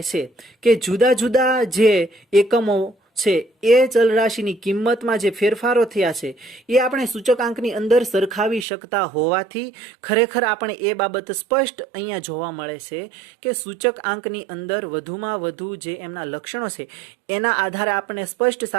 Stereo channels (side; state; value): left; drops out; at 8.7 s